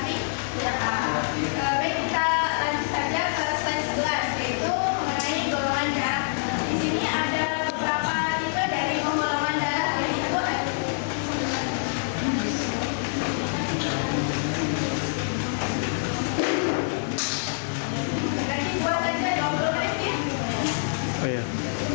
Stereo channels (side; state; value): right; silent; digital silence